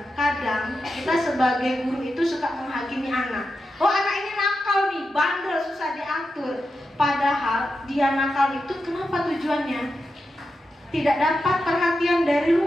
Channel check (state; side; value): normal; both; correlation 0.89